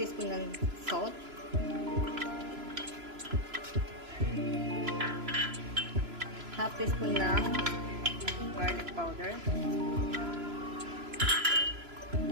ng salt, half teaspoon ng garlic powder,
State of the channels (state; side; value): late; left; 3.0 ms